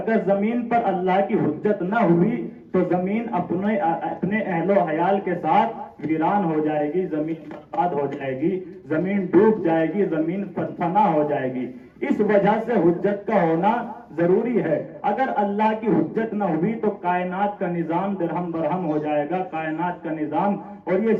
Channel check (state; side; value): identical; both; correlation 1.00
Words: زمین پر اللہ کی حجت نہ ہوئی تو زمین اپنے اہل و عیال کے ساتھ ویران ہو جائے گی، زمین برباد ہو جائے گی، زمین ڈوب جائے گی، زمین فنا ہو جائے گی۔ اس وجہ سے حجت کا ہونا ضروری ہے۔ اگر اللہ کی حجت نہ ہوئی تو کائنات کا نظام درہم برہم ہو جائے گا، کائنات کا نظام اور یہ